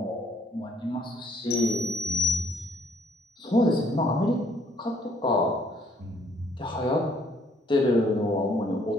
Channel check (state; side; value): normal; both; correlation 0.65